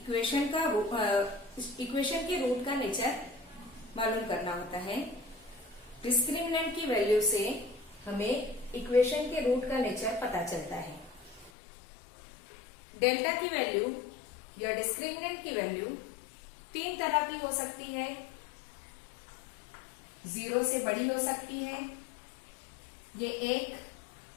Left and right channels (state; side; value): drops out; right; at 11.5 s